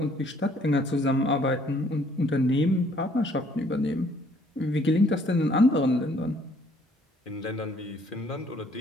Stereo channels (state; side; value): normal; both; correlation 0.62